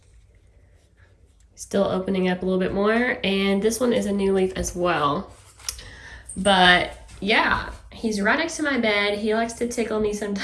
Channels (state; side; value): identical; both; correlation 1.00